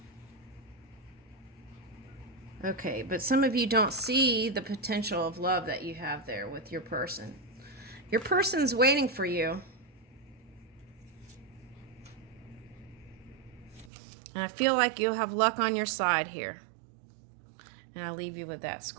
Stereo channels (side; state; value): left; drops out; at 13.9 s